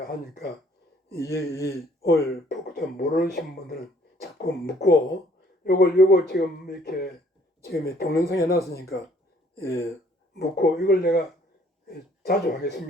오늘 좀 모르시는 분들은 자꾸 묻고 요걸 지금 이렇게 지금 동영상에 놨으니까 묻고 이걸 내가 자주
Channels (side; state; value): both; normal; correlation 0.61